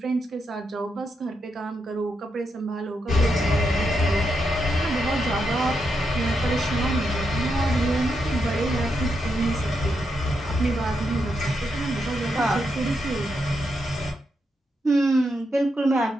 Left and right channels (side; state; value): both; normal; correlation 0.83